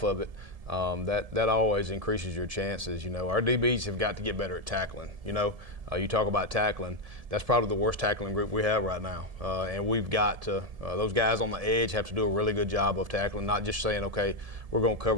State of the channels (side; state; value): left; late; 1.7 ms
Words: of it, that always increases your chances. Our DBs have got to get better at tackling. You talk about tackling, that's probably the worst tackling group we have right now. And we've got to, those guys on the edge have to do a really good job of tackling, not just saying, okay, we're going to